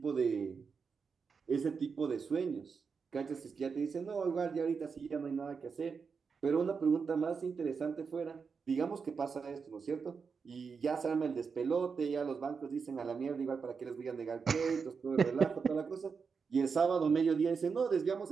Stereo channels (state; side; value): quieter; left; 5.5 dB